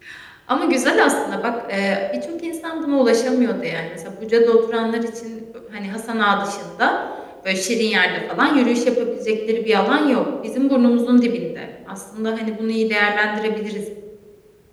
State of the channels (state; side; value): identical; both; correlation 1.00